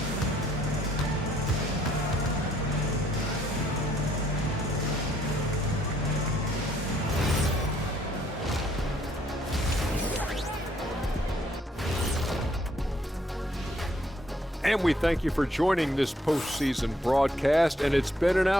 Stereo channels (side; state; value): both; normal; correlation 0.67